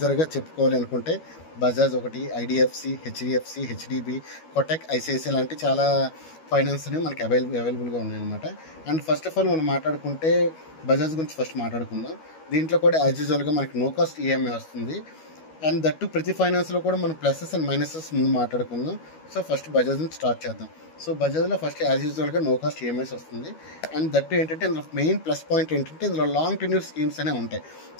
చెప్పుకోవాలి అనుకుంటే బజాజ్ ఒకటి, IDFC, HDFC, HDB, Kotak, ICICI లాంటి చాలా ఫైనాన్స్ అనేవి మనకి అవైలబుల్గా ఉన్నాయన్నమాట. అండ్ ఫస్ట్ ఆఫ్ ఆల్ మనం మాట్లాడుకుంటే బజాజ్ గురించి ఫస్ట్ మాట్లాడుకుందాం. దీంట్లో కూడా యాజ్ యూజువల్గా మనకి నో కాస్ట్ ఈఎంఐ వస్తుంది. అండ్ దట్టు ప్రతి ఫైనాన్స్లో కూడా మనం ప్లసెస్ అండ్ మైనసెస్ ముందు మాట్లాడుకుందాం. సో ఫస్ట్ బజాజ్ నుంచి స్టార్ట్ చేద్దాం. సో బజాజ్లో ఫస్ట్ యాజ్ యూజువల్గా నో కాస్ట్ ఈఎంఐస్ వస్తుంది. అండ్ దట్టు ఏంటంటే ఇందులో మెయిన్ ప్లస్ పాయింట్ ఏంటంటే ఇందులో లాంగ్ టెన్యూర్ స్కీమ్స్ అనేవి ఉంటాయి.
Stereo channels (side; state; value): right; late; 13 ms